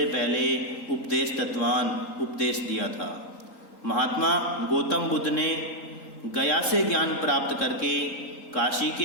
पहले उपदेश दत्तवान, उपदेश दिया था। महात्मा गौतम बुद्ध ने गया से ज्ञान प्राप्त करके काशी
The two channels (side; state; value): right; late; 3.7 ms